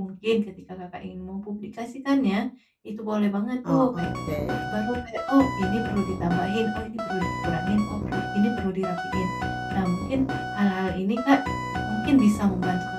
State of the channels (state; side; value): identical; both; correlation 1.00